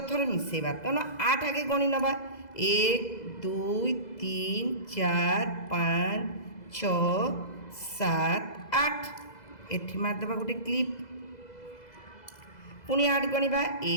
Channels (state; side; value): late; right; 2.0 ms